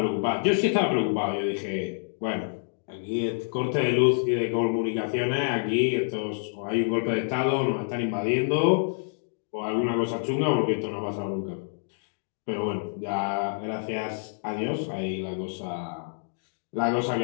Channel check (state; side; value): silent; right; digital silence